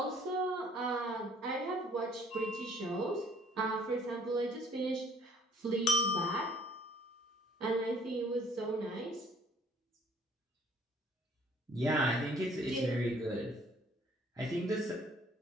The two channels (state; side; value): normal; both; correlation 0.58